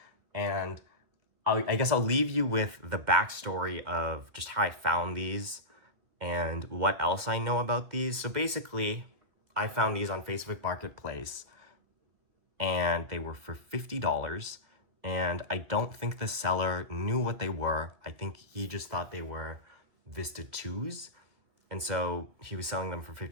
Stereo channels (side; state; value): left; late; 2.0 ms